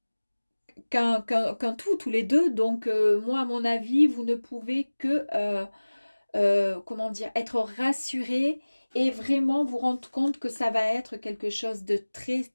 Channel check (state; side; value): inverted; both; correlation -1.00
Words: qu'un tout, tous les deux. Donc, moi, à mon avis, vous ne pouvez que, comment dire, être rassuré et vraiment vous rendre compte que ça va être quelque chose de très,